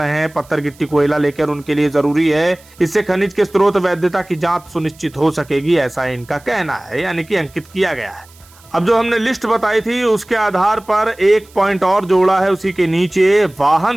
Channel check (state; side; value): noise; right; hiss, 27 dB below the sound